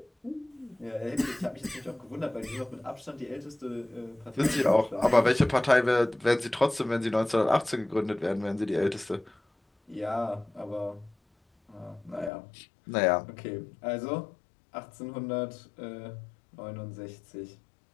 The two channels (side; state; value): right; drops out; at 12.3 s